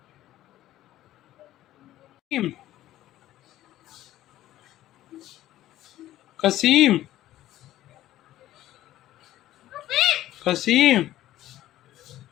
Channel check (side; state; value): right; quieter; 14.2 dB